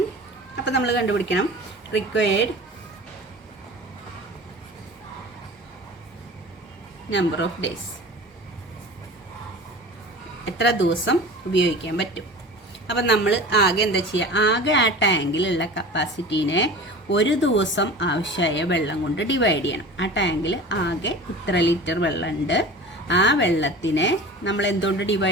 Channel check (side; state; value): both; normal; correlation 0.37